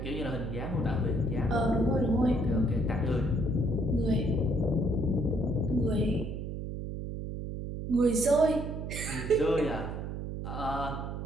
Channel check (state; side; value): noise; right; hum, 5 dB below the sound